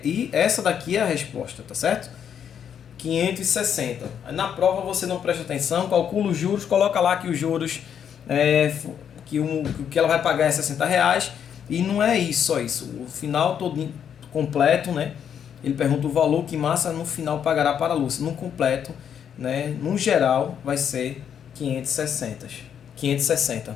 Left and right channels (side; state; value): right; quieter; 8.4 dB